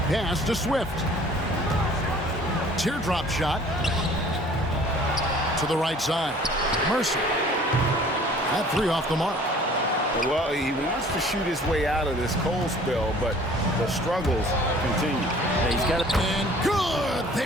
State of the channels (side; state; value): both; normal; correlation 0.51